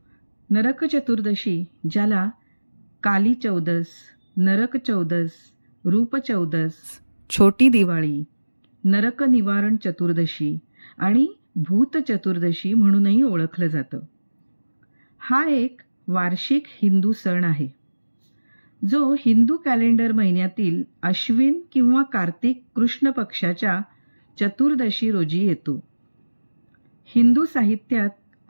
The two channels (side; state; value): both; inverted; correlation -1.00